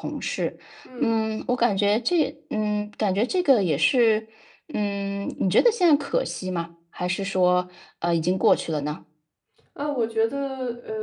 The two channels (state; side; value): identical; both; correlation 1.00